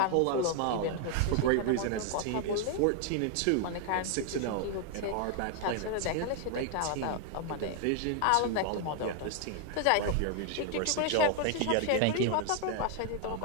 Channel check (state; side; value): different; both; correlation 0.00